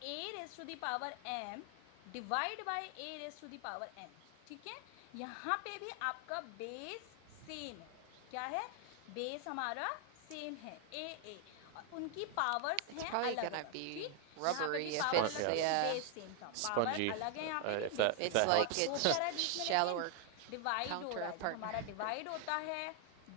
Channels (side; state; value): both; different; correlation 0.00